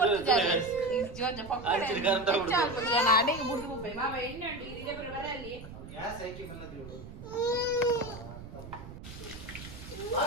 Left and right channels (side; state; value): right; noise; rumble, 14 dB below the sound